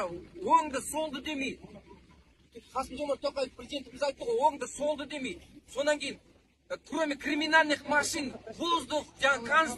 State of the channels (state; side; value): identical; both; correlation 1.00